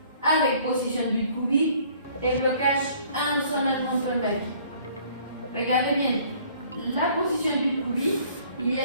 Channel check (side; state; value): both; inverted; correlation -0.57